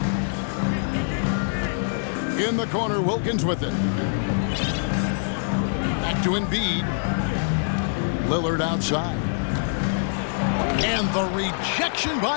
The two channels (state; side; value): silent; right; digital silence